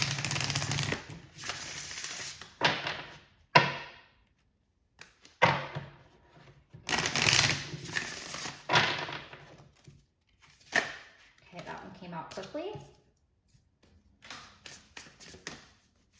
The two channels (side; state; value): both; identical; correlation 1.00